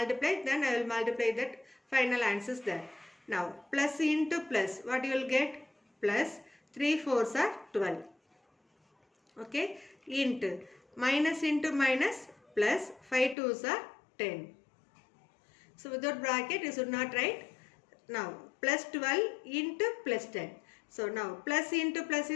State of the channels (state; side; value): drops out; right; at 13.4 s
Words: then I will multiply that final answers there. Now plus into plus, what you will get? Plus 3 4s are 12. Okay. Into minus plus 5 2s are 10. So without bracket you should not write. Now plus 12 into plus 10. So now plus into plus